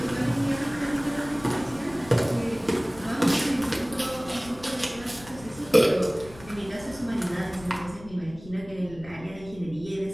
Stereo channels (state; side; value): noise; left; rumble, 18 dB below the sound